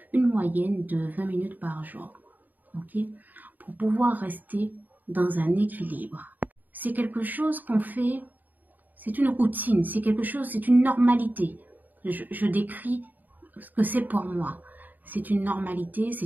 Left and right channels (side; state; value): left; late; 0.085 ms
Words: une moyenne de 20 minutes par jour. Okay? Pour pouvoir rester dans un équilibre. C'est quelque chose qu'on fait, c'est une routine, c'est quelque chose, c'est une normalité. Je décris ce que c'est pour moi. C'est une normalité,